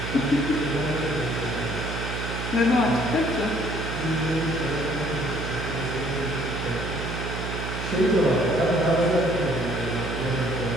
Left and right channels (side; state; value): right; noise; hum, 5 dB below the sound